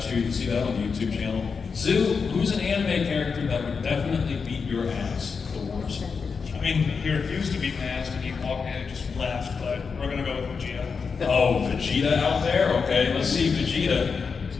year. You can see that on the YouTube channel. Zoo, who's an anime character that would definitely beat your ass the worst? I mean, he refused to beat my ass when he walked in and just left, but we're gonna go with Vegeta. Oh, Vegeta out there? Okay, let's see Vegeta.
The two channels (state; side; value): quieter; right; 5.4 dB